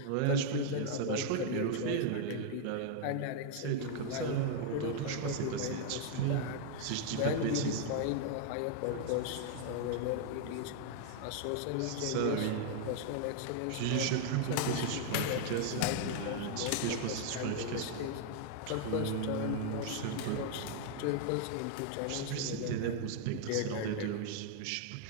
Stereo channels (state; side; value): different; both; correlation 0.00